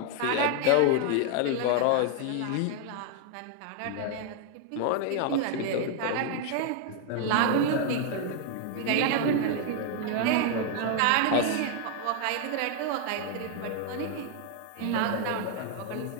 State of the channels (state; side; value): different; both; correlation 0.00